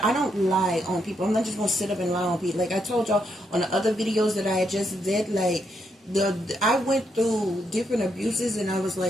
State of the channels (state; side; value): normal; both; correlation 0.78